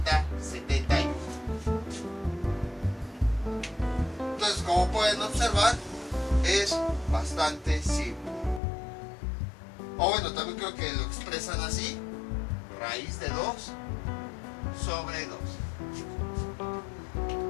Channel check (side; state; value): right; drops out; at 8.6 s